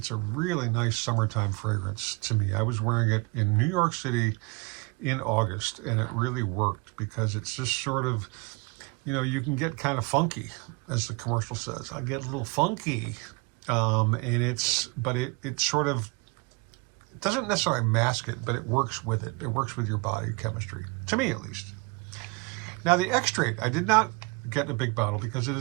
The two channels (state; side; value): quieter; left; 27.8 dB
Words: really nice summertime fragrance to me. I was wearing it in New York City in August, and it really worked because it's just sort of, you know, you can get kind of funky, as the commercial says. I get a little funky, and it sort of, it doesn't necessarily mask it, but it works with it. It works with your body chemistry, to me at least. Now the Extrait, I did not get a big bottle because it